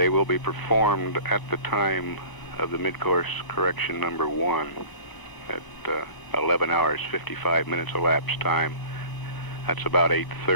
will be performed at the time of the mid-course correction number 1 at 11 hours 55 minutes elapsed time. That's about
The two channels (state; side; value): late; right; 1.0 ms